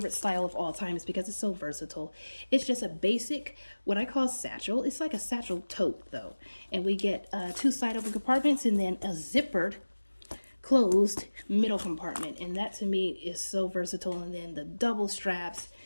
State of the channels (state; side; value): inverted; both; correlation -1.00